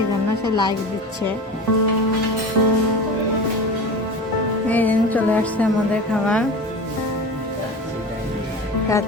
জন্য সে লাইক দিচ্ছে। এই দিন চলে আসছে আমাদের খাবার।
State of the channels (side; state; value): both; normal; correlation 0.32